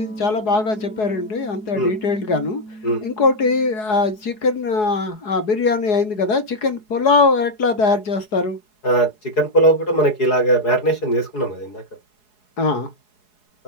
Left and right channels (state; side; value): late; right; 4.7 ms